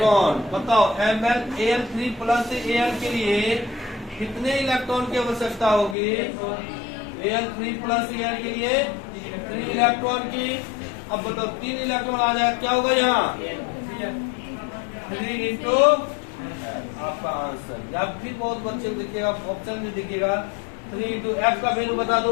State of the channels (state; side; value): drops out; right; at 6.0 s